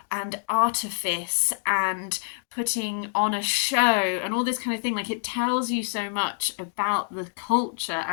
artifice and putting on a show and all this kind of thing. Like it tells you so much about the culture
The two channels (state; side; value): silent; right; digital silence